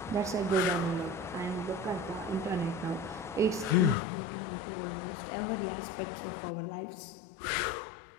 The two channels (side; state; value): right; drops out; at 4.0 s